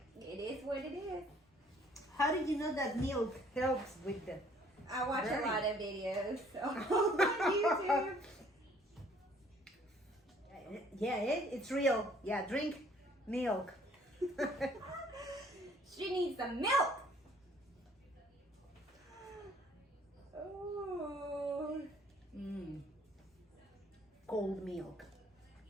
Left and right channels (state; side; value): normal; both; correlation 0.59